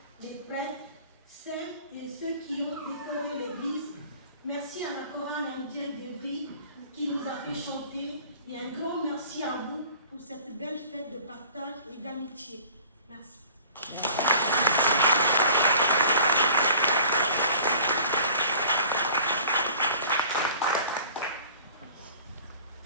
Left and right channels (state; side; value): inverted; both; correlation -0.47